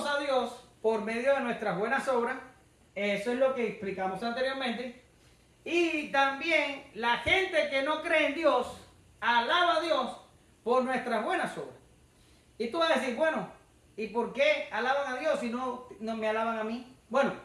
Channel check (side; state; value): both; identical; correlation 1.00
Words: a Dios por medio de nuestras buenas obras. Eso es lo que explicamos anteriormente. Y también la gente que no cree en Dios, alaba a Dios por nuestras buenas obras. Y tú vas a decir, bueno, ¿y por qué alaban a Dios y no me alaban a mí? Bueno,